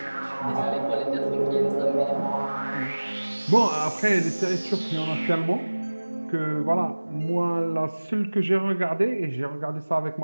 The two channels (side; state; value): both; inverted; correlation -1.00